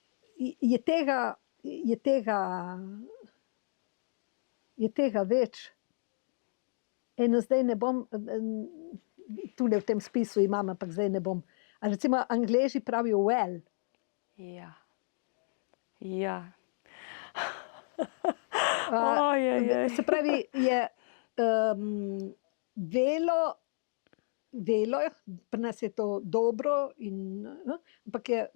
je tega več. Eno zdaj ne bom, tule v tem spisu imam, ampak zdaj ne bom. A recimo Angleži pravijo well. Ja. Ja. Se pravi, je velo, pri nas je to dobro, ampak je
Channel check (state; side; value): silent; right; digital silence